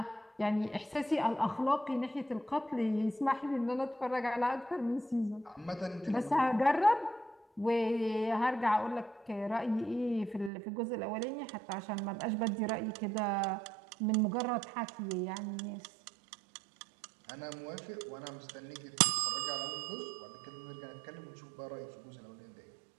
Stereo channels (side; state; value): left; drops out; at 10.5 s